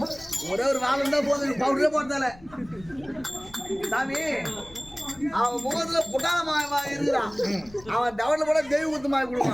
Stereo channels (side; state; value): left; noise; rumble, 23 dB below the sound